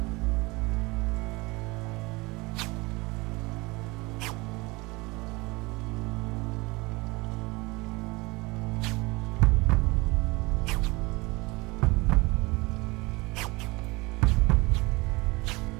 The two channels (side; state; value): left; quieter; 24.0 dB